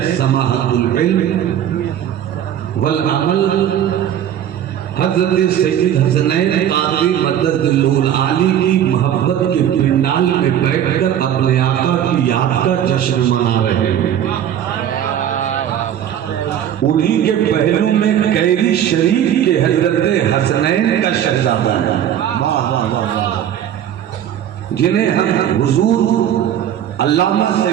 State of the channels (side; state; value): left; quieter; 10.3 dB